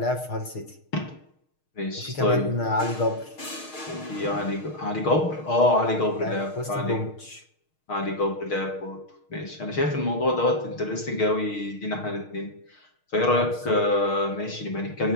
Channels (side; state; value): right; late; 6.5 ms